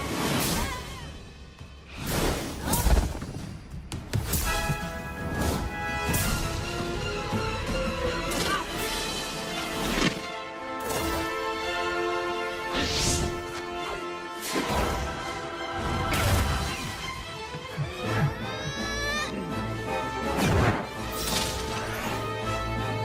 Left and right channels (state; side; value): identical; both; correlation 1.00